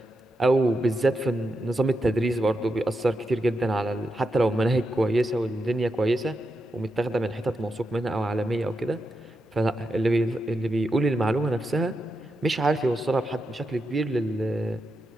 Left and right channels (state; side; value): normal; both; correlation 0.86